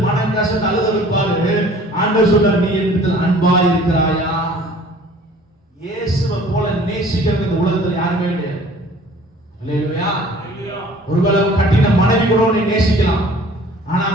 மனம் கசந்து அழுத வைப்பாரு. ஆண்டவர் சொல்றார், நீ என்னிடத்தில் அன்பா இருக்கிறாயா? இயேசுவை போல நேசிக்கிறது இந்த உலகத்துல யாருமே கிடையாது. அல்லேலூயா. ஒருவேளை கட்டின மனைவி கூட உன்னை நேசிக்கலாம், ஆனா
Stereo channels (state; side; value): normal; both; correlation 0.50